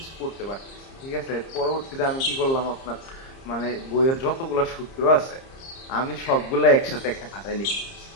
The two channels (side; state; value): right; late; 30 ms